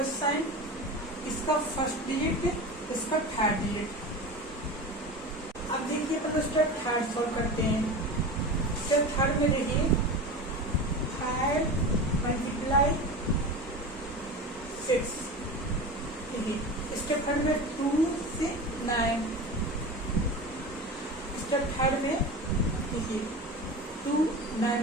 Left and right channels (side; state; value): both; normal; correlation 0.29